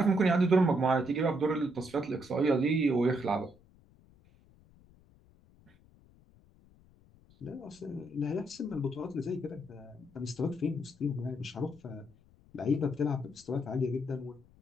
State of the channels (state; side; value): noise; left; rumble, 28 dB below the sound